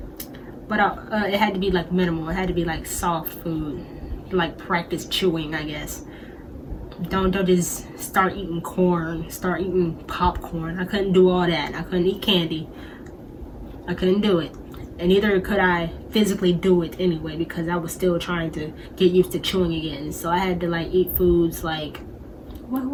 But it had to be like minimal. It had to be like soft food, like practice chewing, I guess. Don't just start eating corn, start eating popcorn. I couldn't do all that. I couldn't eat candy. I couldn't do it. And neither could I physically do it anyway, because I was still trying to get used to chewing again. So I had to like eat foods like, what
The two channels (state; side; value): identical; both; correlation 1.00